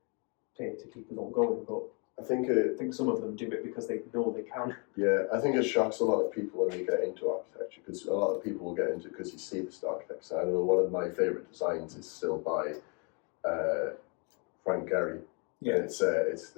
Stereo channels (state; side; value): quieter; right; 34.7 dB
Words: pay to keep us all going. But I think some of them do it because they know they can. Yeah, I think it shocks a lot of people when they get into architecture because a lot of people will get into it because you see the star architects. I know one of my favourite designs is still by Frank Gehry. Yeah. And it's